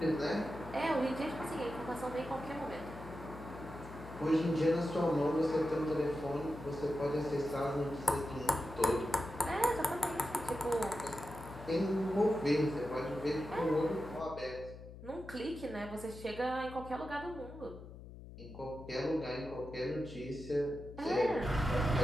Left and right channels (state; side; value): noise; left; hum, 14 dB below the sound